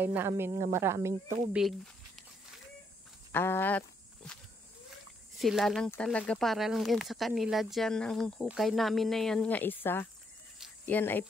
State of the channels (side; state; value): both; normal; correlation 0.74